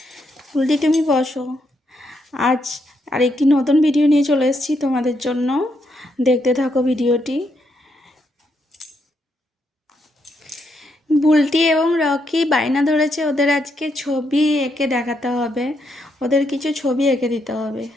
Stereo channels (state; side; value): normal; both; correlation 0.78